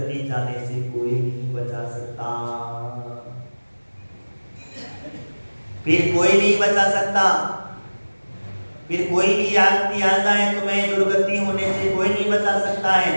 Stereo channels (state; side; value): inverted; both; correlation -1.00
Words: जाने से कोई नहीं बचा सकता, फिर कोई नहीं बचा सकता। फिर कोई भी आपकी आ जाए तुम्हें दुर्गति होने से कोई नहीं बचा सकता है।